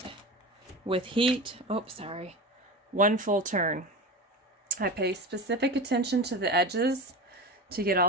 with heat. Oh, sorry. One full turn. I pay specific attention to the edges to get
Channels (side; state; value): both; normal; correlation 0.27